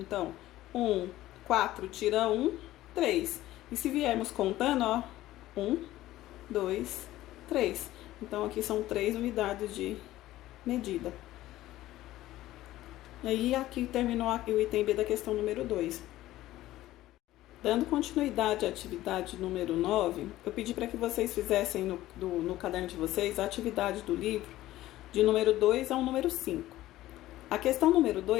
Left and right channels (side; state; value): right; quieter; 15.4 dB